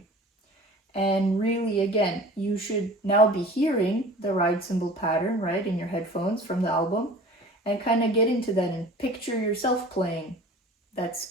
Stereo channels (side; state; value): both; normal; correlation 0.43